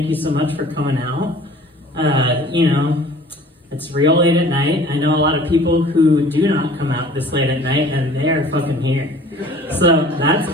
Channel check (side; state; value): both; normal; correlation 0.48